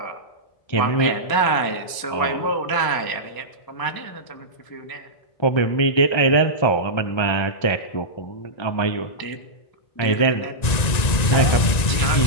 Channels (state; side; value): late; right; 1.9 ms